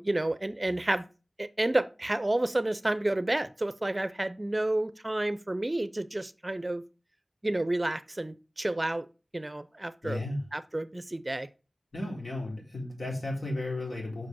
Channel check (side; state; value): both; normal; correlation 0.98